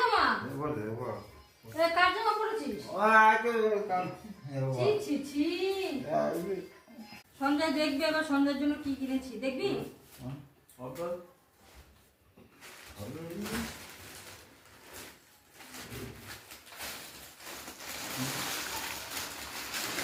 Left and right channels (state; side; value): identical; both; correlation 1.00